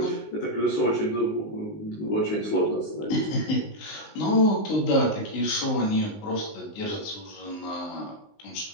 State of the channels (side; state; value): right; late; 19 ms